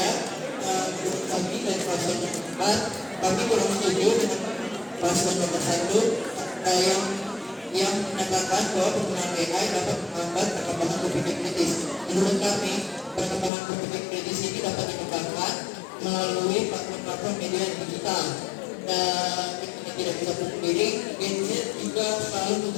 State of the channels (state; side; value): drops out; right; at 13.5 s